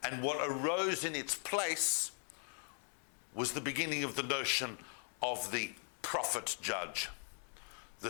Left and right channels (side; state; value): right; silent; 51 dB below the other